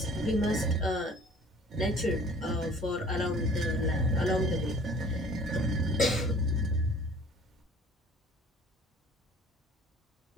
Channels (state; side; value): normal; both; correlation 0.50